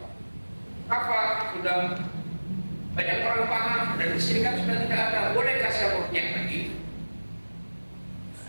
sudah banyak orang paham dan kesyirikan sudah tidak ada. Bolehkah saya ruqyah lagi?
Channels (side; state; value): both; inverted; correlation -1.00